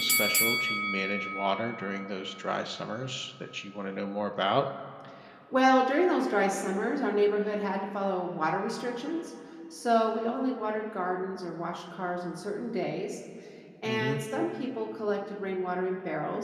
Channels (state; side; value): identical; both; correlation 1.00